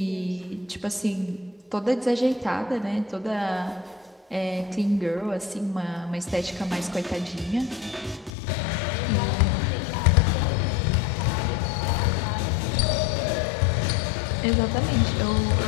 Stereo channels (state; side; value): drops out; right; at 8.3 s